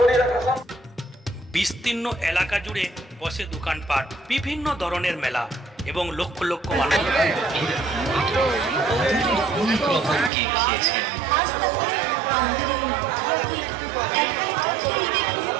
বিস্তীর্ণ এলাকা জুড়ে বসে দোকানপাট, বিভিন্ন ধরনের মেলা এবং লক্ষ লক্ষ মানুষ।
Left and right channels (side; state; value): left; drops out; at 10.3 s